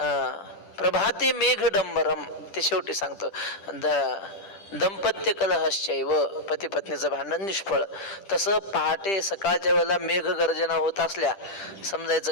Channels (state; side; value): late; right; 10 ms